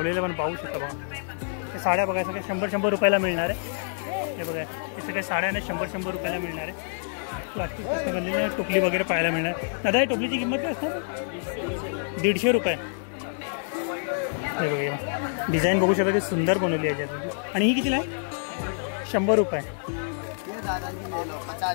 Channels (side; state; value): right; silent; digital silence